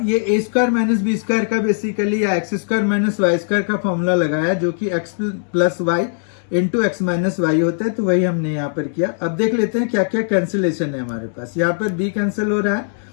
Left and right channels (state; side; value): silent; right; digital silence